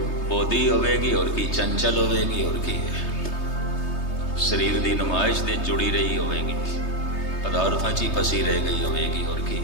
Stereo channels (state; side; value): late; right; 3.2 ms